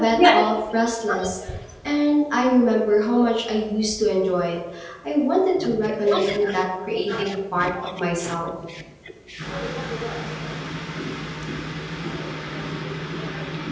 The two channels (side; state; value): both; identical; correlation 1.00